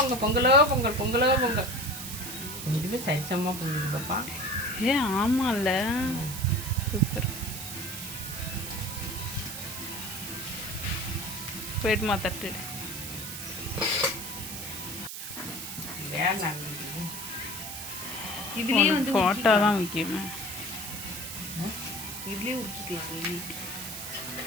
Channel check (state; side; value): noise; right; hiss, 8 dB below the sound